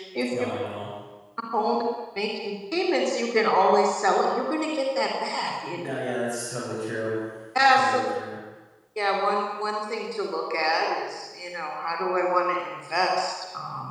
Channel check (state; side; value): identical; both; correlation 1.00